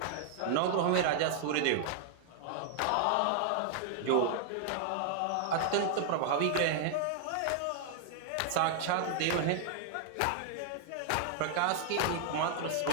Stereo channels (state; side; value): different; both; correlation 0.00